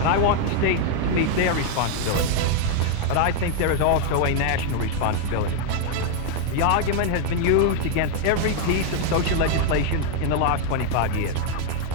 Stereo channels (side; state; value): both; different; correlation 0.00